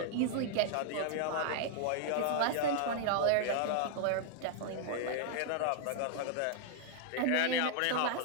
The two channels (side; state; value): both; different; correlation -0.01